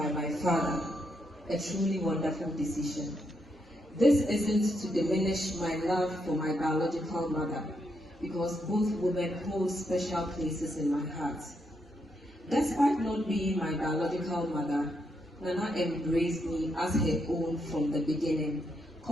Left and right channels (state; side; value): normal; both; correlation 0.79